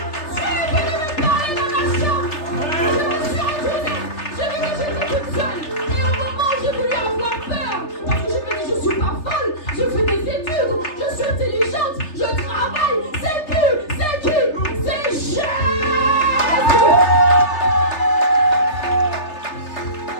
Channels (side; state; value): right; late; 3.3 ms